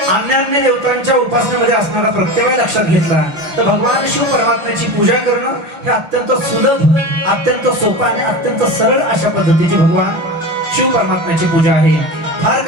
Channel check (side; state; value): left; late; 6.5 ms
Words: अन्य देवतांच्या उपासनेमध्ये असणारा प्रत्यय लक्षात घेतला तर भगवान शिव परमात्म्याची पूजा करणं हे अत्यंत सुलभ, अत्यंत सोपं आणि अत्यंत सरळ अशा पद्धतीची भगवान शिव परमात्म्याची पूजा आहे। फार